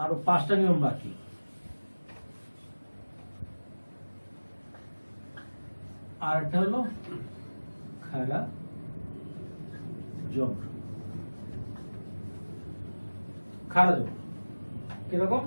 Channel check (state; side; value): inverted; both; correlation -1.00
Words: আর 5টা নিয়ম বাকি। আর একটা হলো খারা জবর। খারা জবর কিরকম?